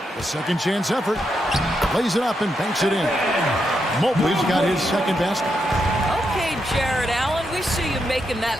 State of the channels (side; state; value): both; normal; correlation 0.82